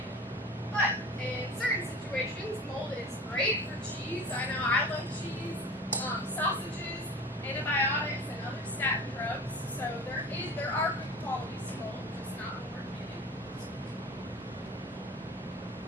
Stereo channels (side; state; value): both; normal; correlation 0.37